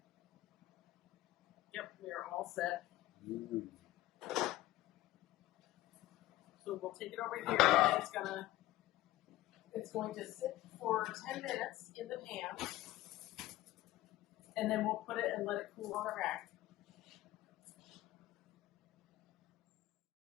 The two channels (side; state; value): right; quieter; 16.0 dB